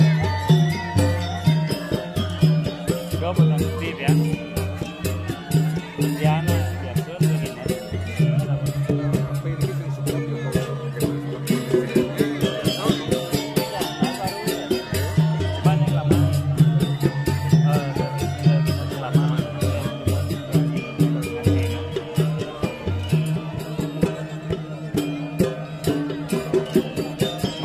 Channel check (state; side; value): identical; both; correlation 1.00